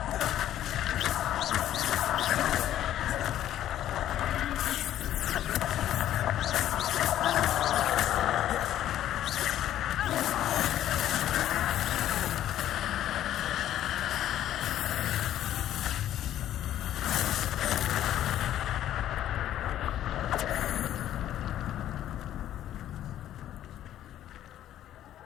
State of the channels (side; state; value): right; quieter; 12.0 dB